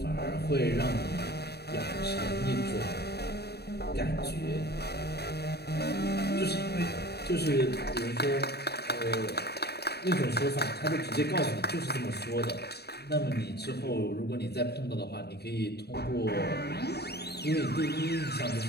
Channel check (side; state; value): right; late; 0.47 ms